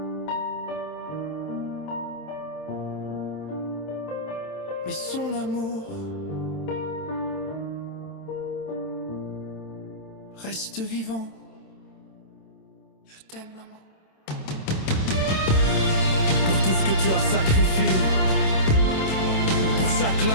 mais son amour reste vivant. Je t'aime, maman. Pour tout ce que tu as sacrifié, pour chaque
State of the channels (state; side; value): late; right; 27 ms